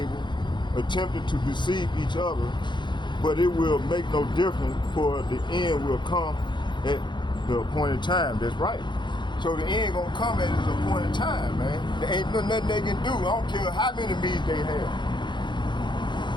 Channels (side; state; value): right; late; 0.22 ms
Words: attempting to deceive each other, but it will make no difference, for the end will come at the appointed time. That's right. So the end gonna come at its appointed time, man. There ain't nothing they can do. I don't care how many meetings they have.